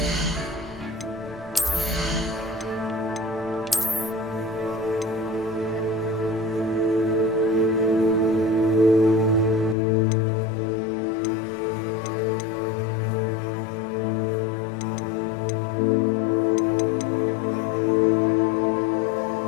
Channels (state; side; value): drops out; right; at 9.8 s